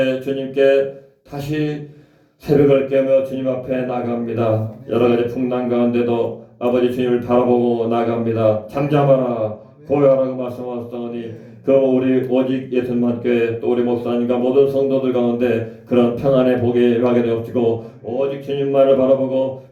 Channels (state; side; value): identical; both; correlation 1.00